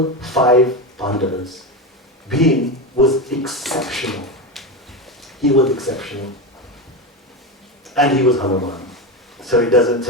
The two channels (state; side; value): normal; both; correlation 0.17